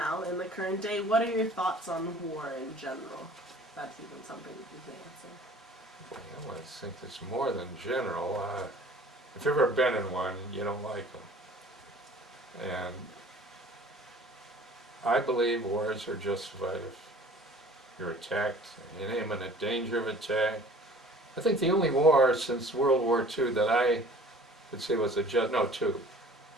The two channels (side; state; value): both; normal; correlation 0.49